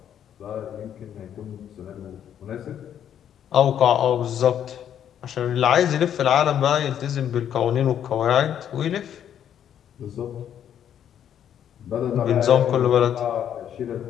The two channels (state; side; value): quieter; right; 9.6 dB